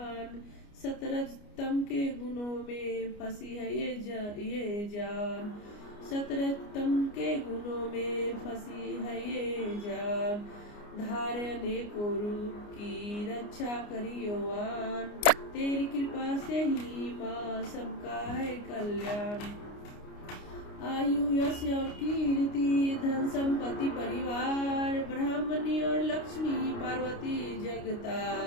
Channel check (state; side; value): late; right; 29 ms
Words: सतरजतम के गुणों में फंसी है ये जान, सतरजतम के गुणों में फंसी है ये जान। धारे अनेकों रूप की रक्षा करियोवान, तेरी कृपा से ही माँ सबका है कल्याण। आयु यश और कीर्ति धन संपत्ति परिवार, ब्राह्मणी और लक्ष्मी पार्वती